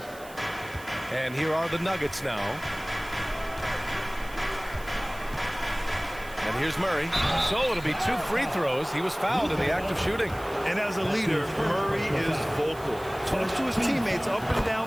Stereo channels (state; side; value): noise; right; hiss, 20 dB below the sound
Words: And here are the Nuggets now. And here's Murray. So it'll be 2 free throws. He was fouled in the act of shooting. And as a leader, Murray is vocal. Talks to his teammates up and